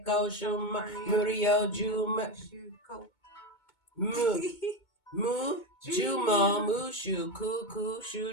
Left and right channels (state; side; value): late; right; 2.2 ms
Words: Shuma, Murio, Juma, Jumo, Mushu, Kuku,